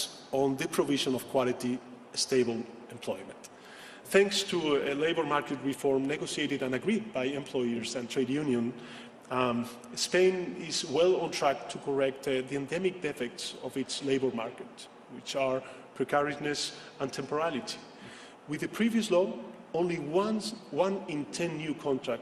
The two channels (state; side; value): identical; both; correlation 1.00